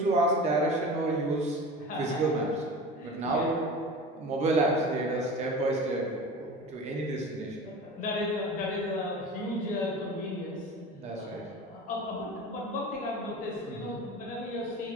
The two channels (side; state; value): both; normal; correlation 0.35